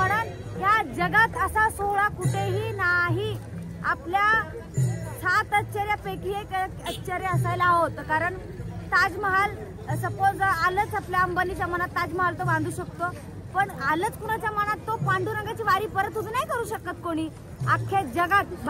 या जगात असा सोहळा कुठेही नाही। आपल्या 7 आश्चर्यापैकी एक आश्चर्य असायला हवं, कारण ताजमहाल सपोज आलंच आपल्या अंबानीच्या मनात ताजमहाल तो बांधू शकतो, पण आलंच कुणाच्या मनात तो पांडुरंगाची वारी परत उभी नाही करू शकत कोणी। अख्ख्या जगात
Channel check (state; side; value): identical; both; correlation 1.00